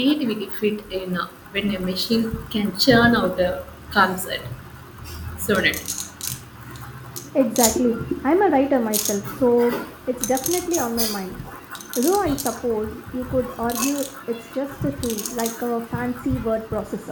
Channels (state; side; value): identical; both; correlation 1.00